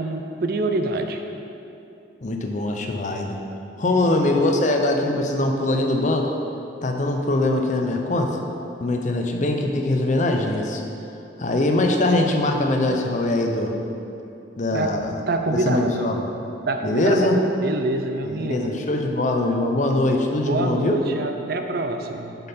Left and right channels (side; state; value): both; normal; correlation 0.46